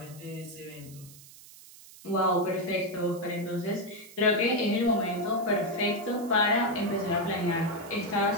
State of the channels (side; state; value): right; noise; hiss, 20 dB below the sound